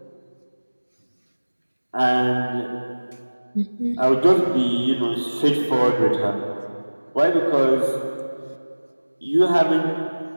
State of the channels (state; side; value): inverted; both; correlation -1.00